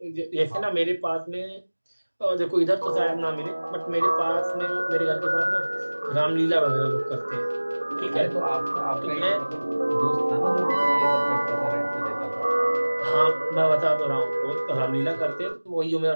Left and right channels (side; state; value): both; inverted; correlation -1.00